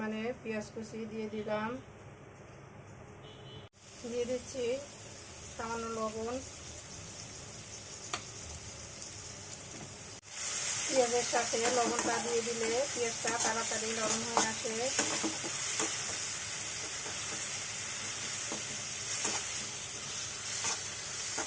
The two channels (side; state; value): both; identical; correlation 1.00